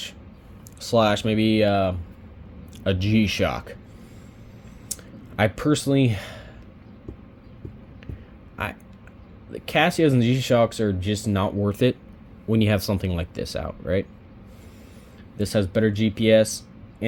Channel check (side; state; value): both; identical; correlation 1.00